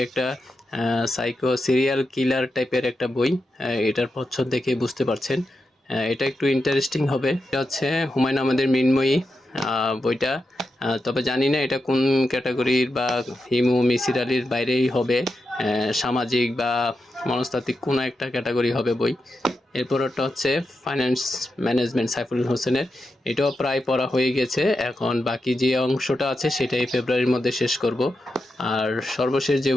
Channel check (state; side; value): normal; both; correlation 0.88